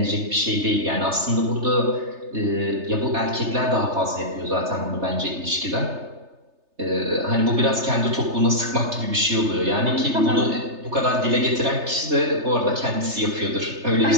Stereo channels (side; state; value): left; late; 3.3 ms